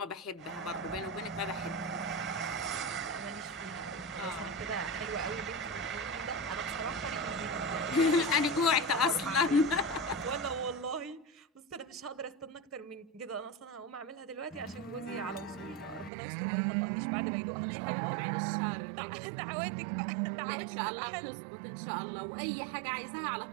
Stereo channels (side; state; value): left; drops out; at 16.1 s